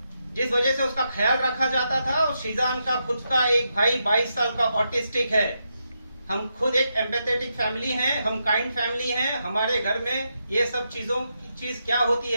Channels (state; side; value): inverted; both; correlation -0.84